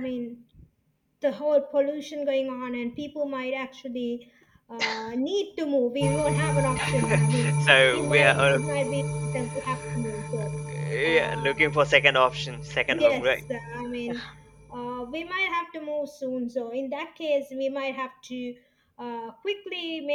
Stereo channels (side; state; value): both; identical; correlation 1.00